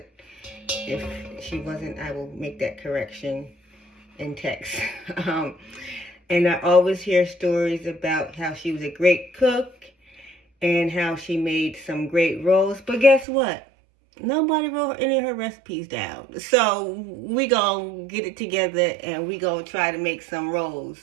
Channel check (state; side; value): drops out; left; at 13.2 s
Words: if she wasn't, I will make that correction in text. And I always hear stories about how she was a great cook and how she made some great rolls. But guess what? Nobody wrote any of her recipes down. So we gonna get it together and we gonna try to make some rolls.